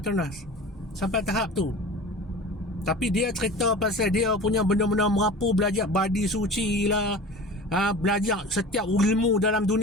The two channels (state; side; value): normal; both; correlation 0.37